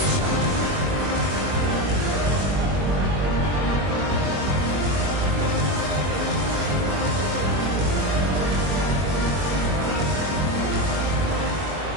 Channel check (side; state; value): left; late; 21 ms